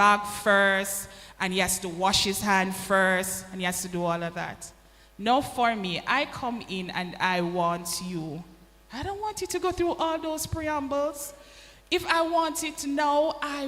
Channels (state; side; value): identical; both; correlation 1.00